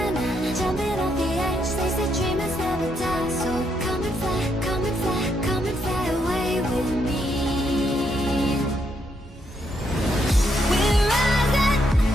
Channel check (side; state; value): both; normal; correlation 0.77